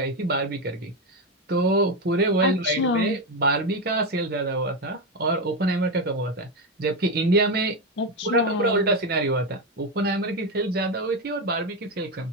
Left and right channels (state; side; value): normal; both; correlation 0.11